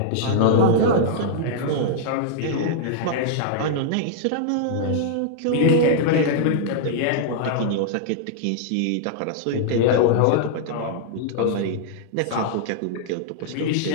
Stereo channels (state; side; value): different; both; correlation -0.01